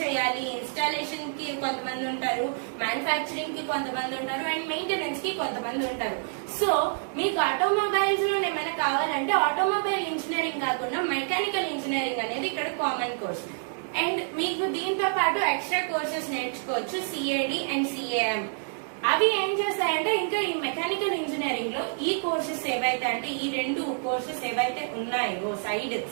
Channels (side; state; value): left; silent; digital silence